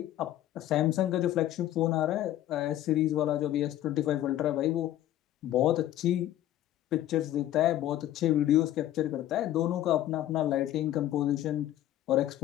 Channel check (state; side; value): quieter; right; 13.1 dB